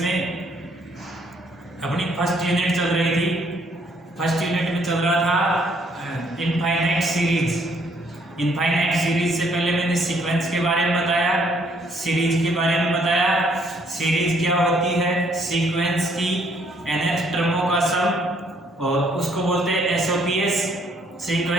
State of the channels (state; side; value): normal; both; correlation 0.66